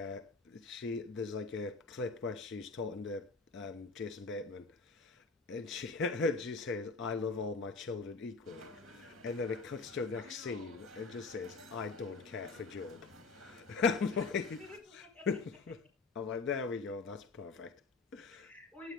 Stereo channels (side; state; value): right; quieter; 4.2 dB